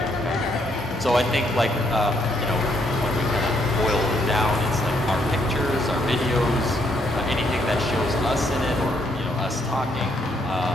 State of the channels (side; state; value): both; normal; correlation 0.73